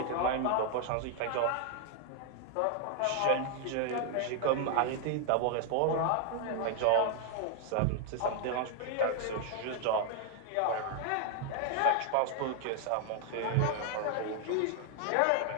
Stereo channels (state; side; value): different; both; correlation 0.00